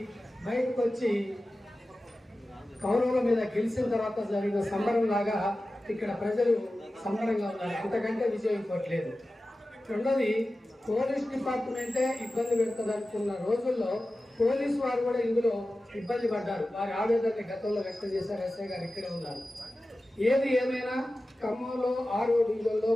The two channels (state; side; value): normal; both; correlation 0.95